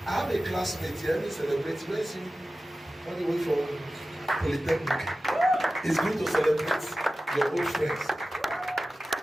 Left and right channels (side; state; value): both; normal; correlation 0.95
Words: I have a classmate here, he celebrates. Where is he? On the way from Polytechnic. It's good to celebrate your old friends.